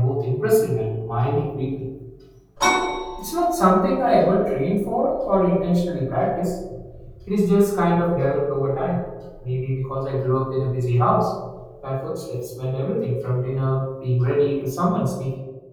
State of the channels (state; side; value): identical; both; correlation 1.00